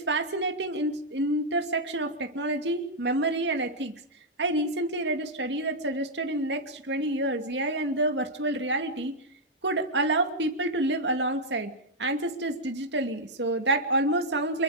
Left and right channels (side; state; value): both; normal; correlation -0.04